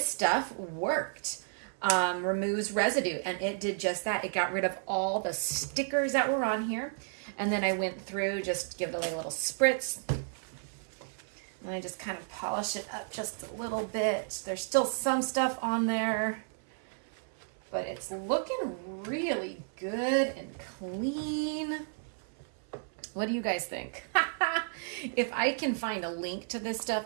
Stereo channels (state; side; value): silent; left; 56 dB below the other